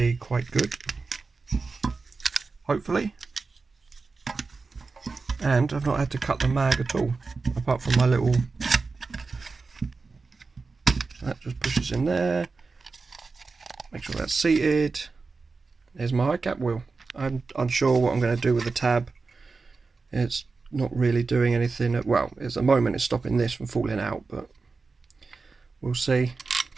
quite good, hopefully. And I've not had to cut the mag at all, apart from my little, that just pushes in there. Make sure that's seated. There's my high cap wheel. I'm unsure what I'm going to do with the tab. It's not really doing anything. Well, at the moment it's stopping this from falling out, but we'll see.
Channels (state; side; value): quieter; left; 4.2 dB